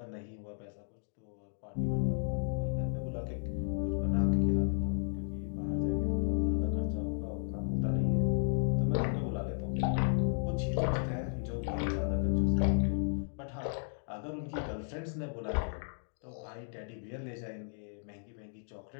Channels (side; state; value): right; silent; digital silence